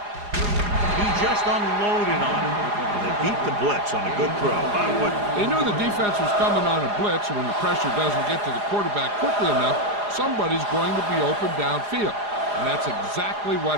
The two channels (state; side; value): late; left; 4.9 ms